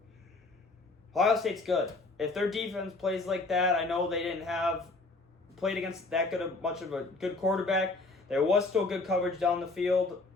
Ohio State's good. If their defense plays like that, I know they didn't have played against that much of a good quarterback. There was still good coverage down the field.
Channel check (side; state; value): right; quieter; 3.4 dB